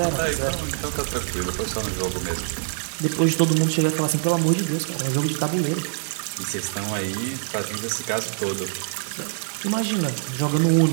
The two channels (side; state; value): left; silent; digital silence